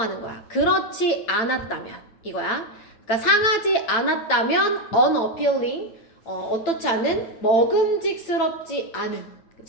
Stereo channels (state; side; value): late; right; 8.9 ms